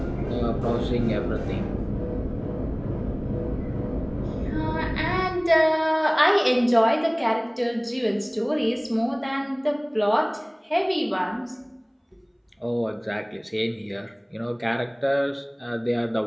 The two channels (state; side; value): identical; both; correlation 1.00